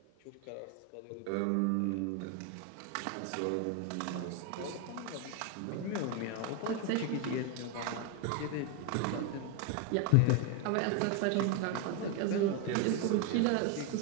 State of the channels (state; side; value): different; both; correlation 0.01